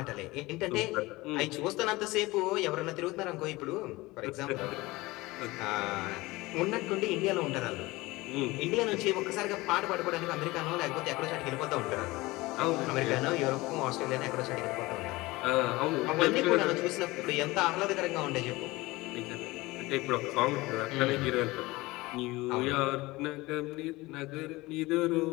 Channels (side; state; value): right; quieter; 20.8 dB